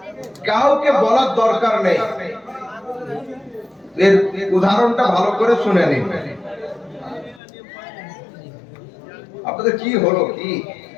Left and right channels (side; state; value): right; drops out; at 7.4 s